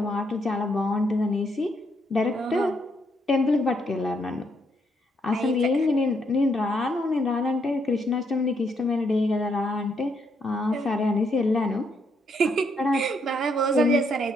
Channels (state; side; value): normal; both; correlation 0.74